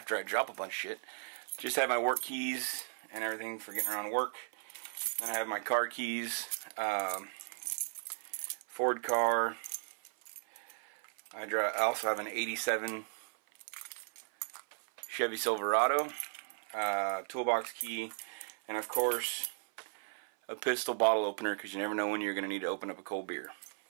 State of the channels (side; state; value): left; silent; 54 dB below the other